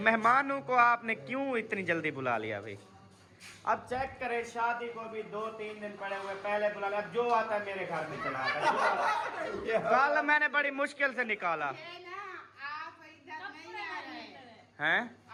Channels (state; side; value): identical; both; correlation 1.00